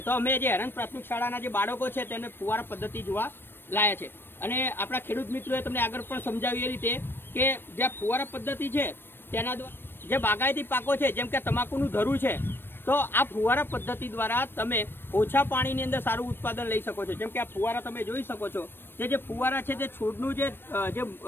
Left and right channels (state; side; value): late; right; 0.10 ms